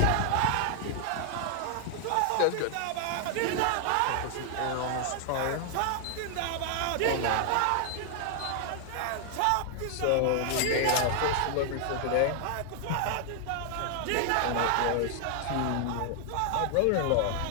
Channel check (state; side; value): different; both; correlation 0.00